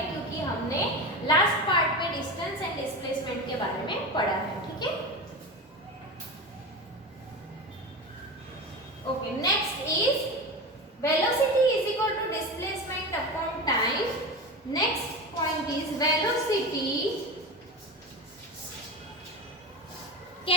क्योंकि हमने लास्ट पार्ट में डिस्टेंस एंड डिस्प्लेसमेंट के बारे में पढ़ा है। ठीक है, okay, next is velocity is equal to displacement upon time. Next point is velocity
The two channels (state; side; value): normal; both; correlation 0.24